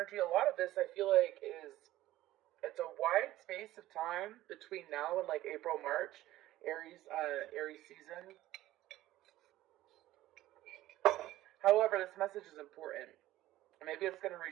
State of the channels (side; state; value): left; quieter; 15.4 dB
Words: A lot of this I feel like it's a wide space of time between now and like April, March, Aries season. However, this message is important. Maybe it's going to